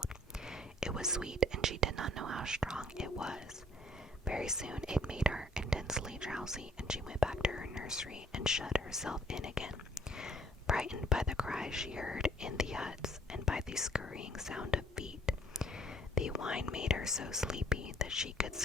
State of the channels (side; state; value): both; normal; correlation 0.60